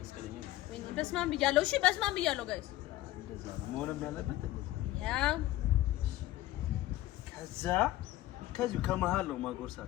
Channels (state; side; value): quieter; right; 15.7 dB